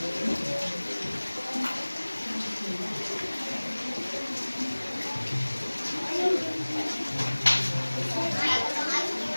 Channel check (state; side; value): inverted; both; correlation -1.00